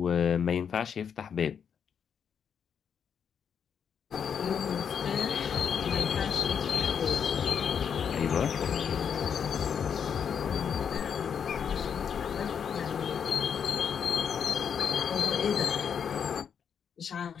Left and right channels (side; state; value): right; quieter; 7.4 dB